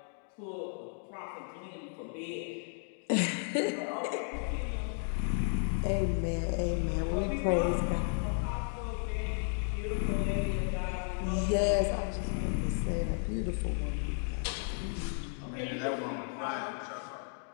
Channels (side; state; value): right; silent; 55 dB below the other